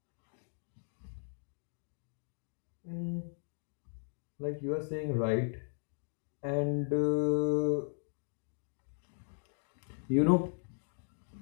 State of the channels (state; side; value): silent; right; digital silence